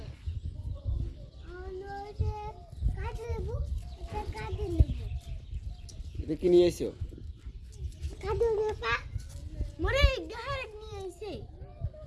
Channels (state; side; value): identical; both; correlation 1.00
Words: এটা কি নিয়ে এসো? মরে গাহার নিয়ে আইছে